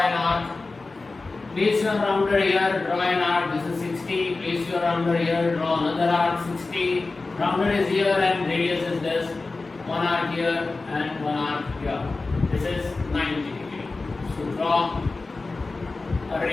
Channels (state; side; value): quieter; right; 3.6 dB